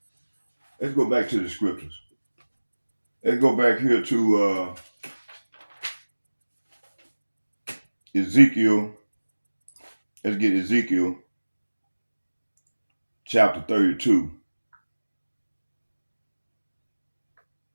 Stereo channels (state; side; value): inverted; both; correlation -1.00